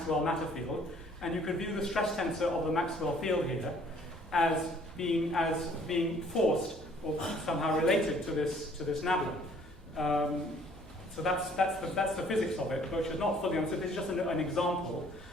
matter field. And you can view the stress tensor of the Maxwell field here as being forced or somehow related to this nabla. So that's the physics of it, which is not fully understood. This is just an example,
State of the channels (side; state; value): both; normal; correlation 0.58